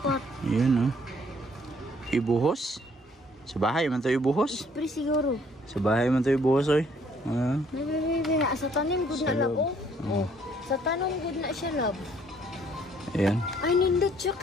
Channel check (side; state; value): both; normal; correlation 0.63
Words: Yun ibuhos? Sa bahay man to ibuhos? Pre siguro. Sa bahay man to ibuhos oy. Sa tanim gud na lab. Sa tanom gud na siya lab. Ayan. Ay nindot siya